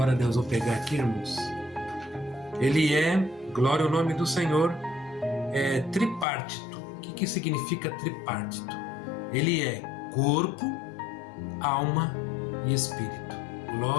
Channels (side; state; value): right; drops out; at 6.2 s